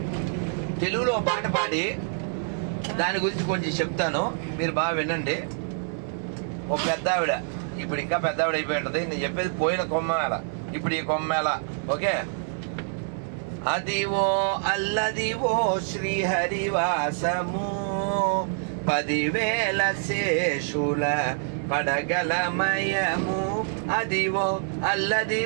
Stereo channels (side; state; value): left; silent; 61 dB below the other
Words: తెలుగులో పాట పాడి దాని గురించి కొంచెం చెప్తాను, మీరు బాగా వినండి. ఓ పెద్ద ఆవిడ, ఇప్పుడు ఇంకా పెద్ద ఆవిడ అయిపోయి ఉంటుంది. నేను చెప్పేది పోయిన కొమ్మేళ, ఇప్పుడు ఈ కొమ్మేళ. ఓకే. అదివో అల్లదివో శ్రీహరివాసము, 10,000 శేషుల పడగలమయము. అదివో